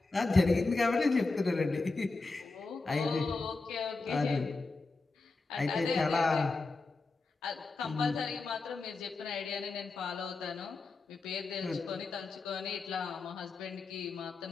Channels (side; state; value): right; quieter; 3.7 dB